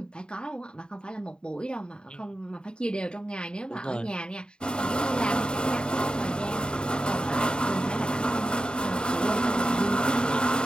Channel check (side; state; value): right; late; 0.049 ms